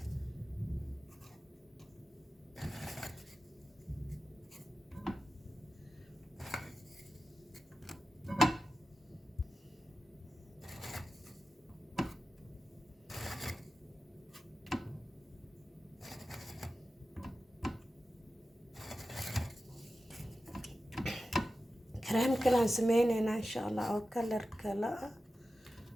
كريم كلان سمينينا إن شاء الله أو كلر كلا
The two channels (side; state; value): both; normal; correlation 0.93